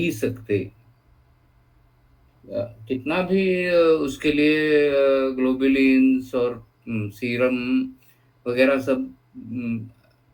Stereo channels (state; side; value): identical; both; correlation 1.00